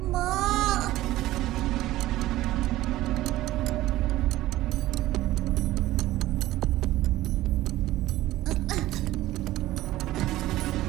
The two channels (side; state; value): left; quieter; 15.9 dB